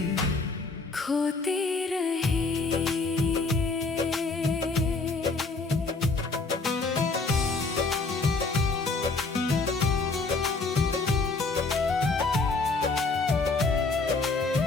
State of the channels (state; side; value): quieter; right; 3.8 dB